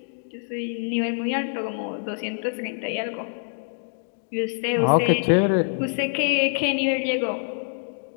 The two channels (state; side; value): silent; right; digital silence